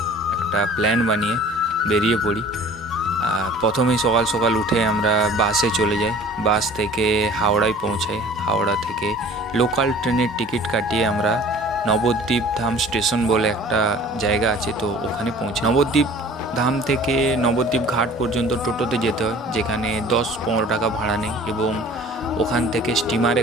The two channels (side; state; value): both; normal; correlation 0.47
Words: একটা প্ল্যান বানিয়ে বেরিয়ে পড়ি। প্রথমেই সকাল সকাল উঠে আমরা বাসে চলে যাই, বাস থেকে হাওড়ায় পৌঁছাই। হাওড়া থেকে লোকাল ট্রেনের টিকিট কাটিয়ে আমরা নবদ্বীপ ধাম স্টেশন বলে একটা জায়গা আছে, তো ওখানে পৌঁছাই। নবদ্বীপ ধাম থেকে নবদ্বীপ ঘাট পর্যন্ত টোটোতে যেতে হয়, যেখানে 10-15 টাকা ভাড়া নেই, এবং ওখান থেকে স্টিমারে